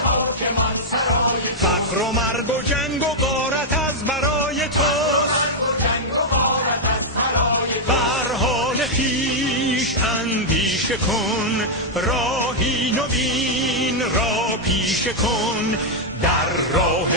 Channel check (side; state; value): both; normal; correlation -0.02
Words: فقر و مرگ و جنگ و غارت از برای توست. بر حال خویش اندیشه کن، راهی نوین را پیشه کن. در راه